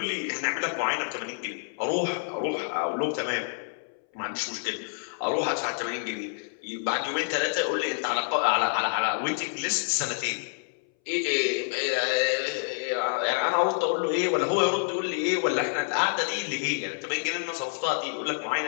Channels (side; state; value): right; silent; 59 dB below the other